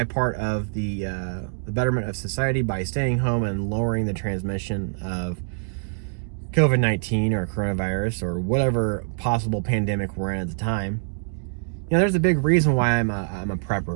part of the betterment of society by staying home and lowering the transmission of COVID-19 or coronavirus or whatever possible pandemic we're in at the time. You know, there's a big reason why I'm a prepper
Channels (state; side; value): silent; left; digital silence